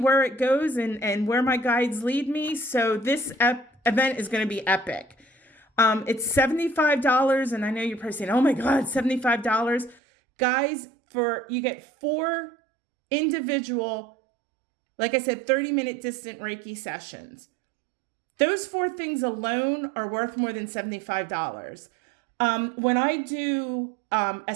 it goes and where my guides lead me. So this event is going to be epic. It's $75, and I know you're probably saying, oh my God, $75. Guys, you get 4 individual, like I said, 30-minute distant Reiki sessions. Those 4 things alone are worth more than $75. When I do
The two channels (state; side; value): drops out; left; at 10.0 s